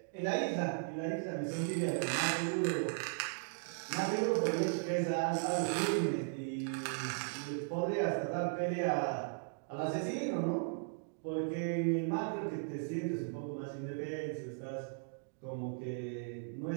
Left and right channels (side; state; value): left; silent; digital silence